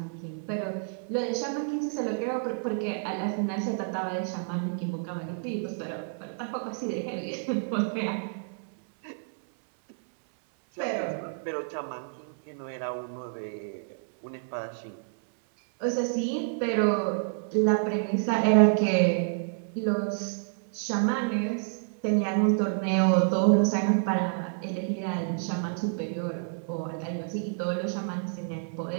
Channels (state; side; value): silent; left; 59 dB below the other